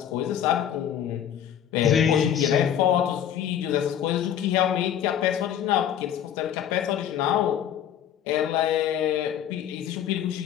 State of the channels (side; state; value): right; quieter; 9.8 dB